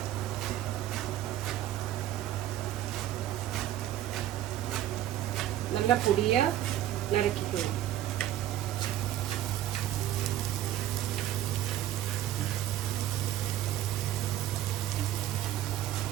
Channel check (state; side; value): quieter; left; 12.7 dB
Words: நல்லா பொடியா நறுக்கிக்கணும்.